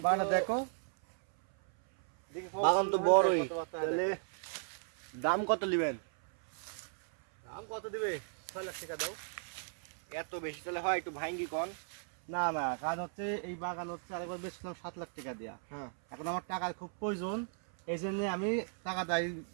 বাগান দেখো বাগান তো বড়ই। তাহলে দাম কত নেবেন? দাম কত দিবে? 6 লাখ টাকা দাও। এত বেশি তাহলে হয় একটু ভাঙ্গি কন। না না, কাজ হচ্ছে এই বাগান হচ্ছে আরেকবার বেচলাম 7 লাখ টাকা দিয়া। হ্যাঁ এখন আমার টাকার খুব প্রয়োজন, এই জন্য আমি টাকা দাই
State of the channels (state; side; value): silent; left; 54 dB below the other